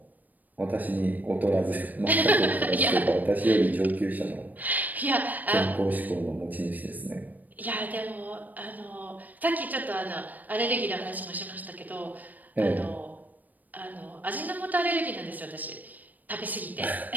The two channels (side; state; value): left; late; 0.083 ms